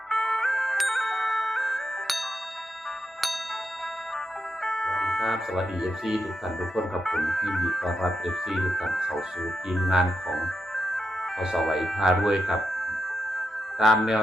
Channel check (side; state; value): both; normal; correlation 0.86